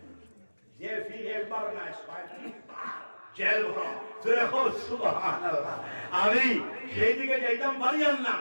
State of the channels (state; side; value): inverted; both; correlation -1.00